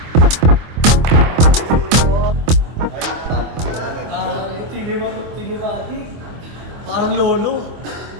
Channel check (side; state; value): left; late; 25 ms